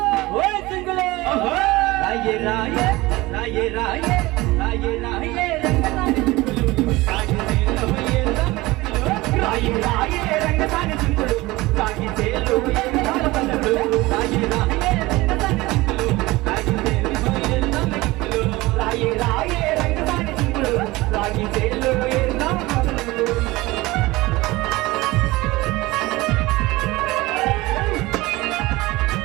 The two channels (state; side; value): quieter; left; 20.4 dB